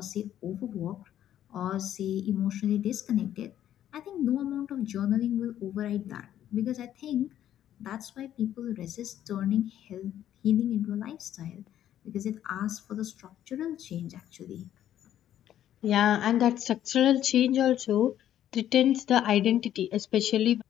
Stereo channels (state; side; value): quieter; right; 11.3 dB